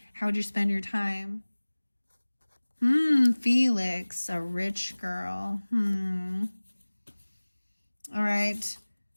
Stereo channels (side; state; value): both; inverted; correlation -1.00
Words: how would you spend your time? Felix, a rich girl. All right.